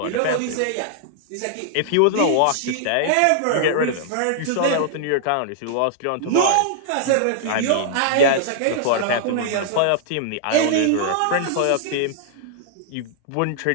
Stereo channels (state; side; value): different; both; correlation -0.01